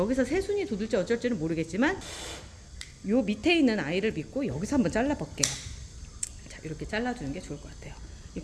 새순이 돋을지 어쩔지는 모르겠지만 요 밑에 있는 아이를 믿고 여기서 한번 잘라볼게요. 자, 이렇게 잘라주는 게 좋을 것 같아요. 이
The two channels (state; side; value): identical; both; correlation 1.00